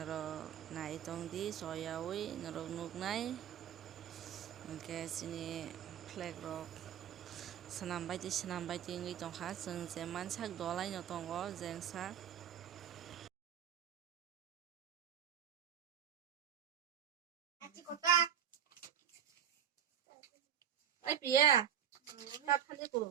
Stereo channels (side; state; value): left; quieter; 9.4 dB